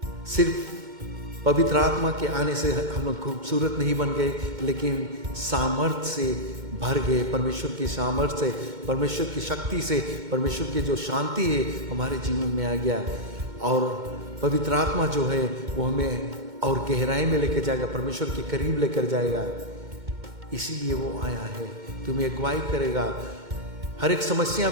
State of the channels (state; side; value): late; left; 2.1 ms